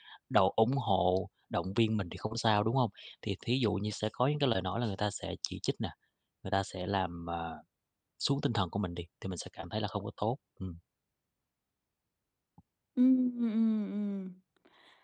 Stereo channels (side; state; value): both; identical; correlation 1.00